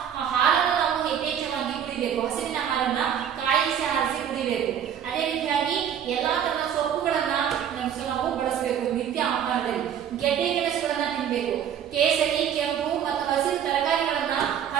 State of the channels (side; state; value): left; quieter; 9.1 dB